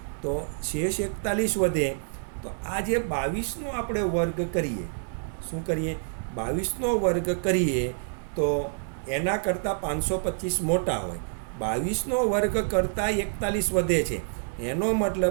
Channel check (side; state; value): left; silent; digital silence